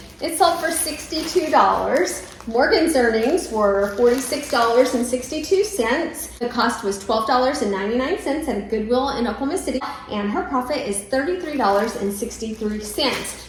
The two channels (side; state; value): both; identical; correlation 1.00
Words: It sold for $62. Morgan's earnings were $46.62. The cost was $12.99 at a Goodwill in Oklahoma City, and her profit is $33.63.